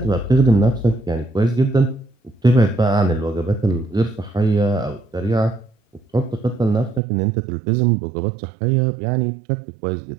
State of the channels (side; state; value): left; drops out; at 7.0 s